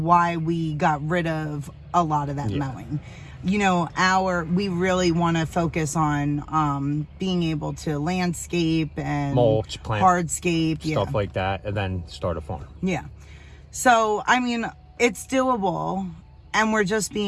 we got rid of a lot of that mowing. You know, we really want to focus on being able to landscape and mulch, plant, hardscape, stuff like that, and then start a farm. Yeah. So, I mean, it's doable, and we're just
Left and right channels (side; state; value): both; identical; correlation 1.00